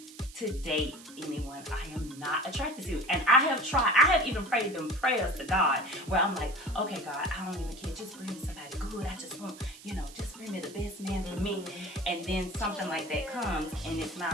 to date anyone I am not attracted to. And I have even prayed them prayers to God where I'm like, okay, God, I don't even care. Just bring me somebody good. I just want, just bring me the best man for me. And then something like that comes and it's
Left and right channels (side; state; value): right; noise; hiss, 18 dB below the sound